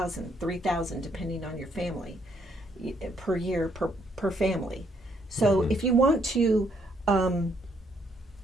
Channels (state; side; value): normal; both; correlation 0.71